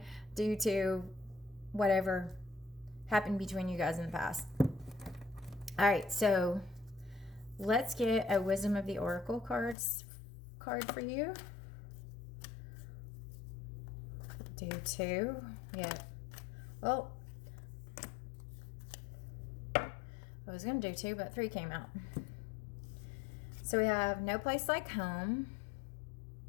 due to whatever happened between you guys in the past. All right, so let's get a Wisdom of the Oracle card for you. Do two. Yeah. Well, I was going to do two, but three came out. So we have No Place Like Home,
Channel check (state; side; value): drops out; right; at 9.8 s